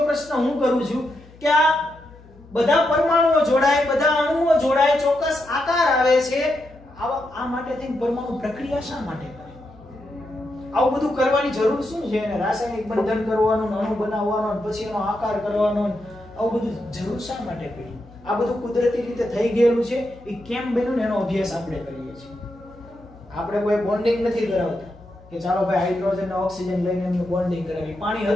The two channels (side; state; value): left; noise; hum, 23 dB below the sound